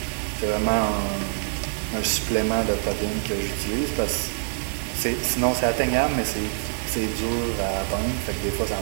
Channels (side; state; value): left; silent; digital silence